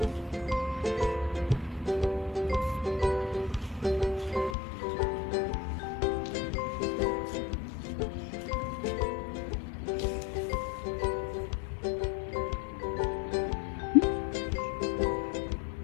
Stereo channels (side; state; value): right; drops out; at 4.5 s